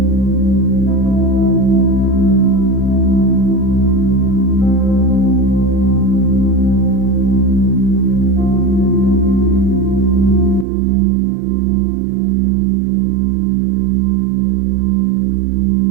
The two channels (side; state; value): left; drops out; at 10.7 s